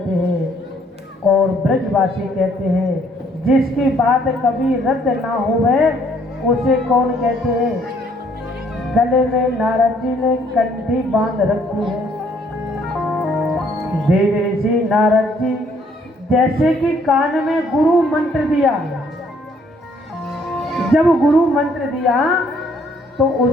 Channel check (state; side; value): normal; both; correlation 0.65